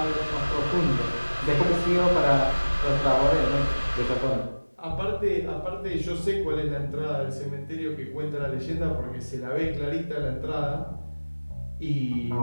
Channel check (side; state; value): both; inverted; correlation -1.00